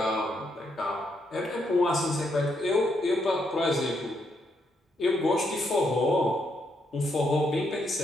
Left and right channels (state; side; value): normal; both; correlation 0.77